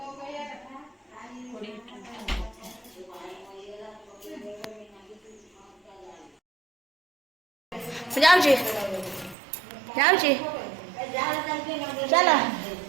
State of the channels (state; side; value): drops out; left; at 9.3 s